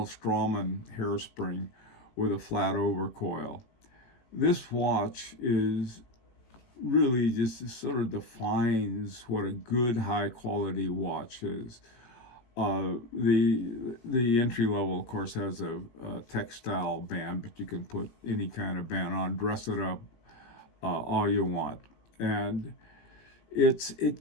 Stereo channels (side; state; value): right; late; 17 ms